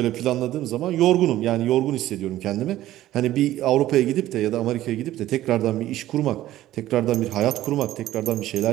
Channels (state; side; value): quieter; left; 14.4 dB